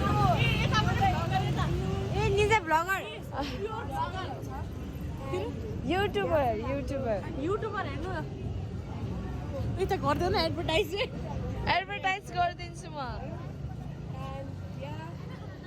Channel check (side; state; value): both; identical; correlation 1.00